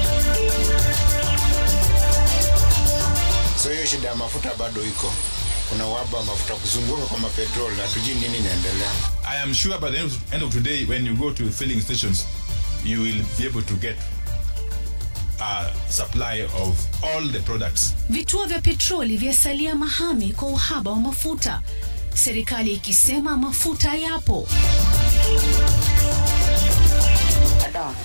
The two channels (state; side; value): inverted; both; correlation -1.00